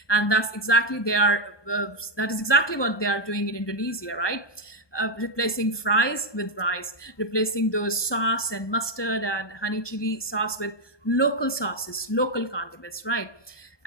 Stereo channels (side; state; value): right; late; 1.2 ms